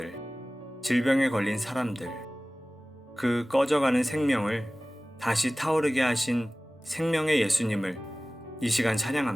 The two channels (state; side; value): normal; both; correlation 0.98